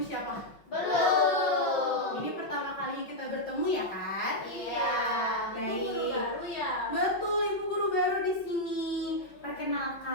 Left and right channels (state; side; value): late; right; 5.8 ms